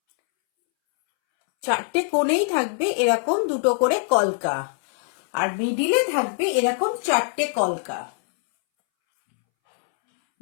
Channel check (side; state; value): right; silent; 64 dB below the other